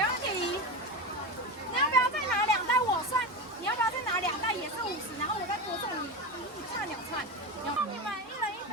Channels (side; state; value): both; normal; correlation 0.20